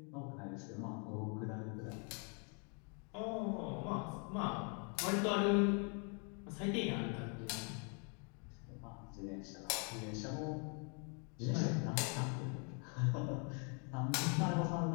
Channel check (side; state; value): right; quieter; 37.9 dB